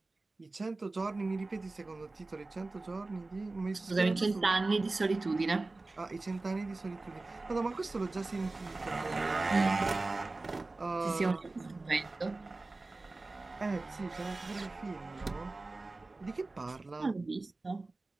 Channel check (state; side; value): quieter; left; 3.3 dB